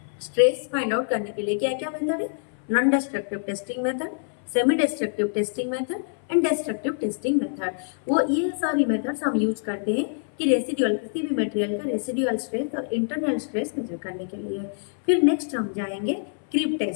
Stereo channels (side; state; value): right; silent; 61 dB below the other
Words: स्ट्रेस फाइंड आउट करने के लिए। क्या क्या मेथड है? Non destructive testing method, semi destructive testing method and destructive testing method. वो ये सारी मेथड्स हम यूज करते हैं कि रेसिडुअल किसी भी मटेरियल का रेसिडुअल स्ट्रेस और इंटरनल स्ट्रेस मेजर करने के लिए। फिर नेक्स्ट हम जाएंगे क्रीप